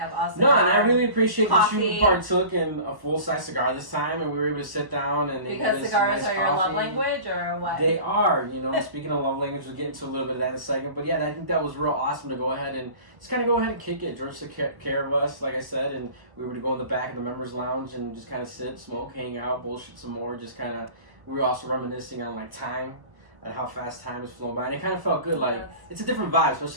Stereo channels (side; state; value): left; late; 1.2 ms